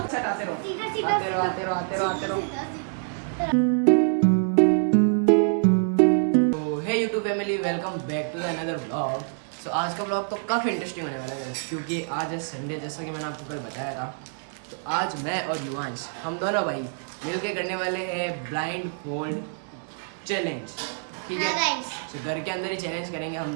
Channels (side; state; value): left; silent; 61 dB below the other